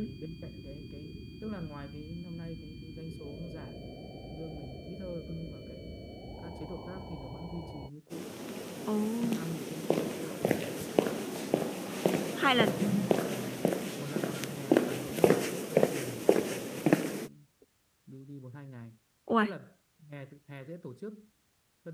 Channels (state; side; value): identical; both; correlation 1.00